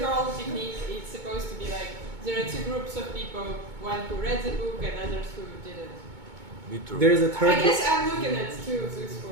whole technique is supposed to be like there are two groups of people, one who read the book and others who didn't. There is a third. I guess I'm looking at two things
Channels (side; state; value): left; late; 2.2 ms